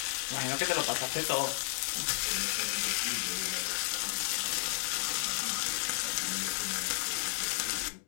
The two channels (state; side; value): silent; right; digital silence